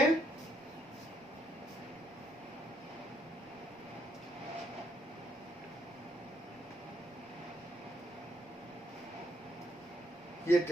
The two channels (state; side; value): noise; right; rumble, 27 dB below the sound